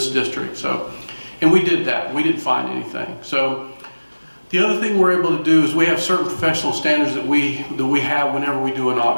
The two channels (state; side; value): inverted; both; correlation -1.00